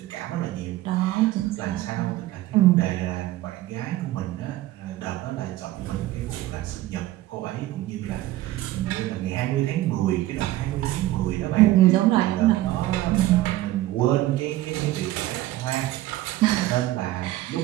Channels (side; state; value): left; quieter; 15.8 dB